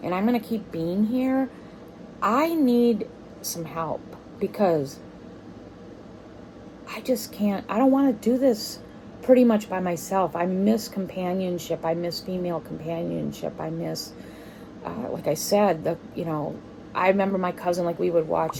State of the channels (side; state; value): both; identical; correlation 1.00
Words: and I'm going to keep being here, I need some help because I just can't, I don't want to do this pretty much by myself. I miss companionship. I miss female companionship. I miss, like I said, you know, I remember my cousin, like we would watch